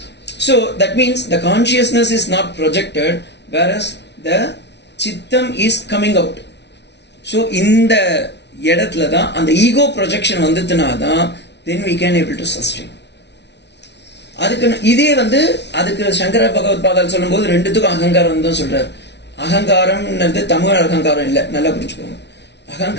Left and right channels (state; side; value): late; right; 0.50 ms